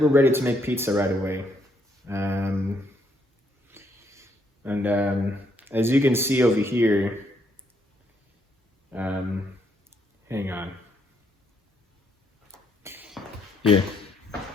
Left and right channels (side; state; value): both; normal; correlation 0.73